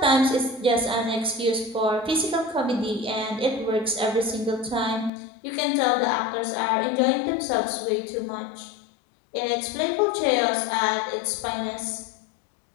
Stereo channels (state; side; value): drops out; right; at 5.1 s